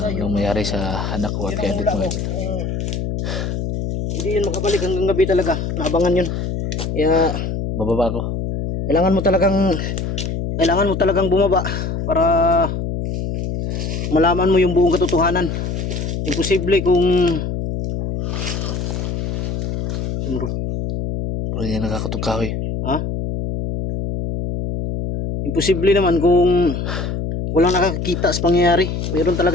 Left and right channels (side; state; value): left; noise; hum, 3 dB below the sound